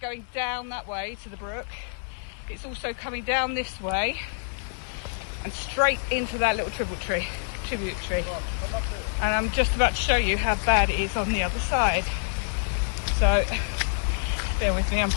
going down that way to the brook, it's also coming down this way and straight into that little tributary. And I'm just about to show you how bad it is on the other side. So bear with me, I'm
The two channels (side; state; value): right; silent; 60 dB below the other